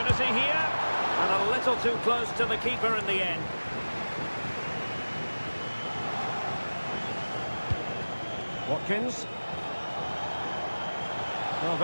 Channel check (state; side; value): inverted; both; correlation -1.00